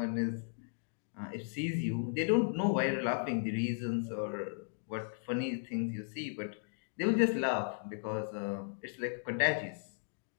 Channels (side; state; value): right; silent; digital silence